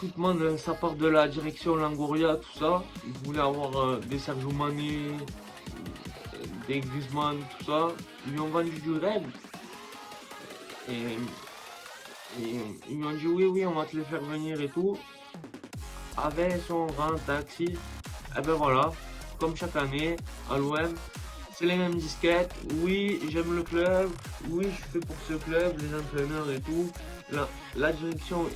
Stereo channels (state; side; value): identical; both; correlation 1.00